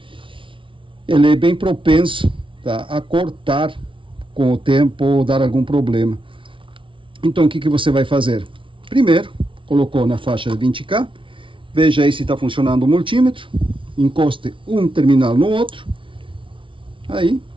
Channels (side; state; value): left; late; 0.25 ms